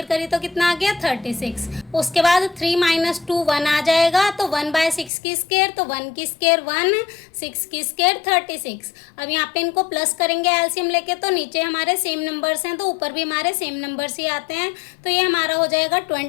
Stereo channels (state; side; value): drops out; right; at 5.1 s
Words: करी तो कितना आ गया 36। उसके बाद 3 - 2 1 आ जाएगा तो 1/6 की स्केयर तो 1 की स्केयर 1, 6 की स्केयर 36। अब यहाँ पे इनको प्लस करेंगे एलसीएम लेके तो नीचे हमारे सेम नंबर्स हैं तो ऊपर भी हमारे सेम नंबर्स ही आते हैं। तो ये हमारा हो जाएगा